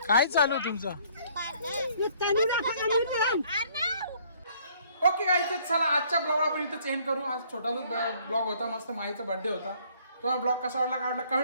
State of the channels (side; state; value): both; inverted; correlation -0.61